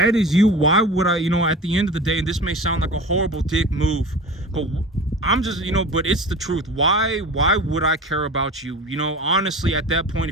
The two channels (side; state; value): both; normal; correlation 0.35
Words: is you, why would I, you know, at the end of the day, and this may sound like a horrible dick move, but I'm just, you know, but it's the truth. Why would I care about you? You know, honestly, at that point,